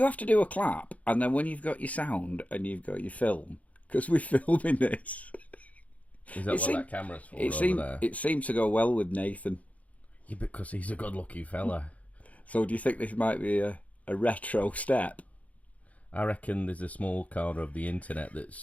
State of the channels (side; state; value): right; late; 0.069 ms